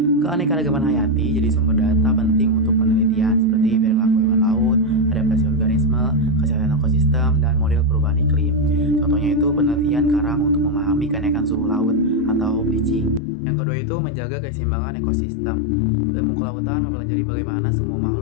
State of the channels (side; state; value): right; drops out; at 13.2 s